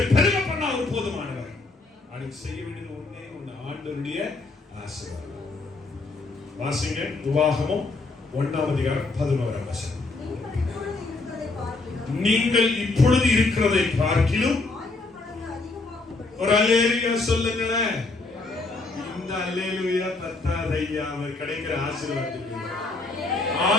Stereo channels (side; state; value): right; quieter; 3.4 dB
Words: பெருமை பண்ணா அவர் போதுமானவர். அதுக்கு செய்ய வேண்டியது ஒண்ணே ஒண்ணு, ஆண்டவருடைய ஆசீர்வாதம். வாசிங்க உபாகமம் 1ஆம் அதிகாரம் 11ஆம் வசனம். நீங்கள் இப்பொழுது இருக்கிறதை பார்க்கிலும் ஒரு அல்லேலூயா சொல்லுங்களேன். இந்த அல்லேலூயா பத்தாது ஐயா, அவர் கிடைக்கிற ஆசீர்வாதத்துக்கு.